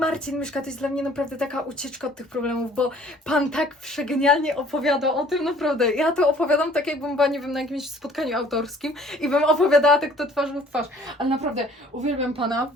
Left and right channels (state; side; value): normal; both; correlation 0.54